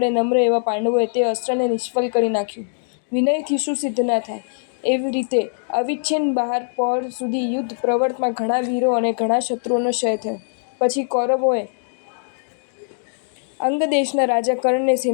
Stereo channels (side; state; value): right; silent; digital silence